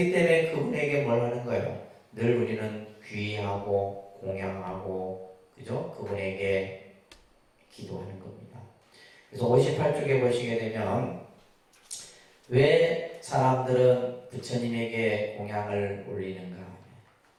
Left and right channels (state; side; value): identical; both; correlation 1.00